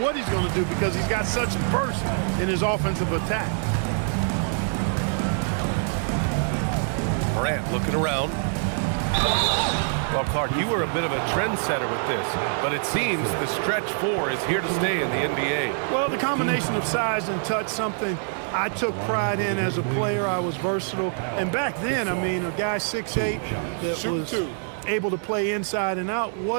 he's going to do because he's got such burst in his offensive attack. Morant looking around. Well, Clark, you were a bit of a trendsetter with this, but it seems the stretch 4 is here to stay in the NBA. Well, the combination of size and touch, something I took pride in as a player. I was versatile. And back then, I mean, a guy 6'8" that was able to play inside and out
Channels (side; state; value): left; silent; 62 dB below the other